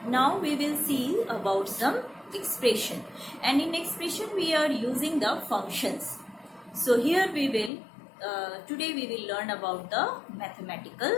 Now we will see about some expression, and in expression we are using the functions. So here we will today we will learn about the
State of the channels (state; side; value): drops out; right; at 7.7 s